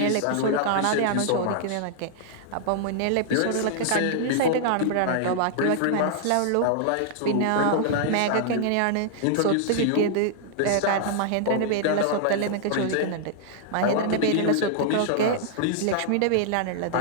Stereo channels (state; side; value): different; both; correlation -0.01